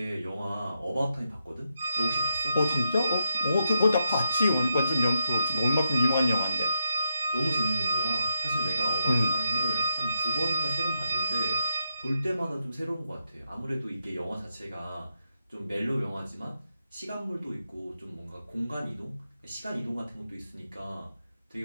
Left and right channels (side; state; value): both; inverted; correlation -0.84